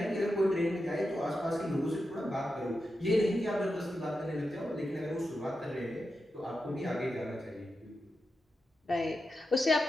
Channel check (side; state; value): both; normal; correlation 0.89